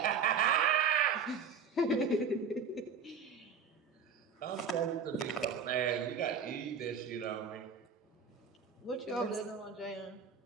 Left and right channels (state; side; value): quieter; left; 5.8 dB